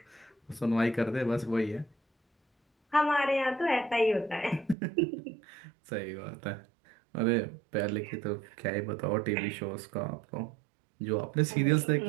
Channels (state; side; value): drops out; left; at 4.8 s